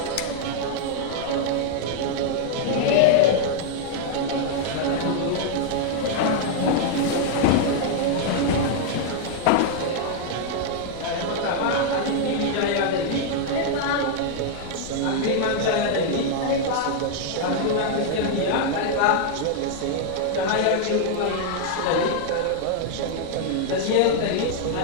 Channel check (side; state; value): both; different; correlation 0.00